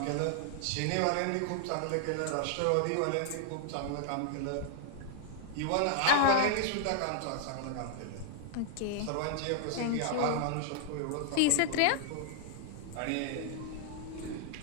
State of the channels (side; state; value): both; different; correlation 0.00